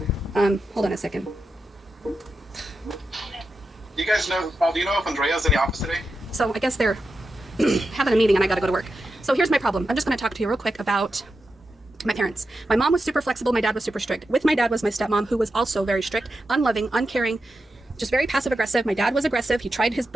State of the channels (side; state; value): both; normal; correlation 0.89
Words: Hold on a second. You guys know, Paul, do you know if Andrea's in the office today? So I guess they're having a meeting and I gotta go to work. So here's my problem. I'm just gonna talk to you real quick about my parents. My mom was super flexible, my dad was super strict. With my dad was my stepmom, who was also very strict, unloving, uncaring, just very passive aggressive. My dad was aggressive. He tried his